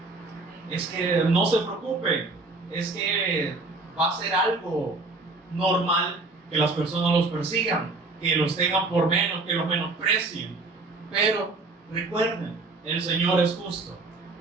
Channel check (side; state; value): left; quieter; 3.4 dB